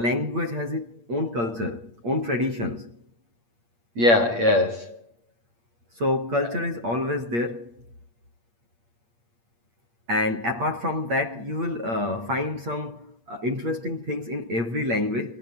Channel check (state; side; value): late; left; 8.6 ms